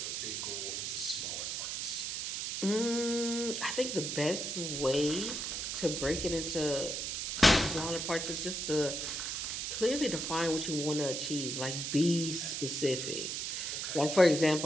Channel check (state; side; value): noise; right; hiss, 3 dB below the sound